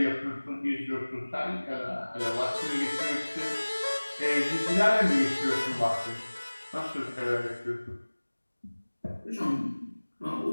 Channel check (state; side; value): inverted; both; correlation -1.00